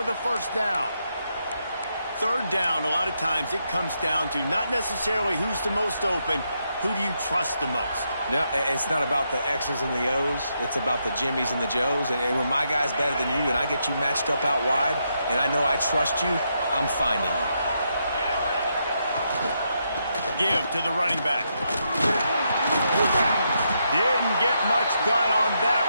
a first down. Third down, a lot of times it comes down to not necessarily who's the most open, who do you trust the most? No, it's not about the X's and the O's. It's about the Jimmies and the Joes. And when my guy's better than you and I get you matched up out wide and I know I trust you, I'm finding you. Give to the running back. Didn't get much done on that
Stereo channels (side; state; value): both; inverted; correlation -0.80